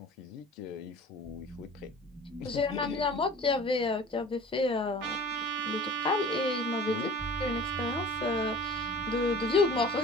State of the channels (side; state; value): both; normal; correlation 0.43